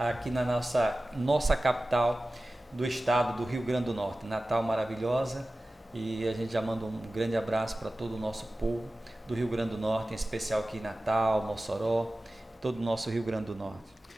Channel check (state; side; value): normal; both; correlation 0.96